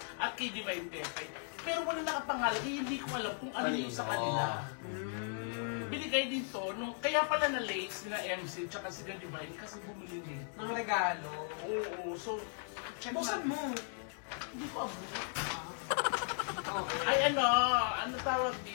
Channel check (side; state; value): right; silent; 53 dB below the other